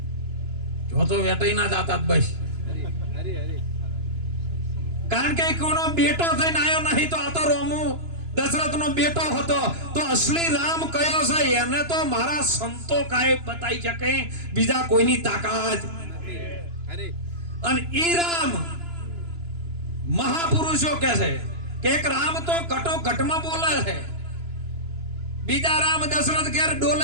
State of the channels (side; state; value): left; late; 2.9 ms